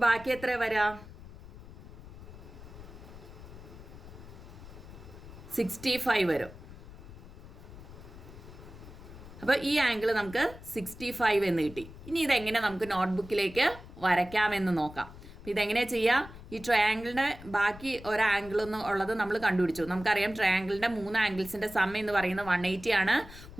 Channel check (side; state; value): left; noise; rumble, 16 dB below the sound